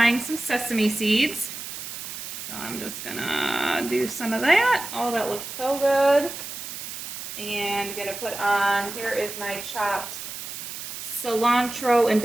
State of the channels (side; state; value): right; noise; hiss, 8 dB below the sound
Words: some sesame seeds. So I'm just gonna do some of that. Oh, that looks so good. And gonna put on, here is my chopped cilantro and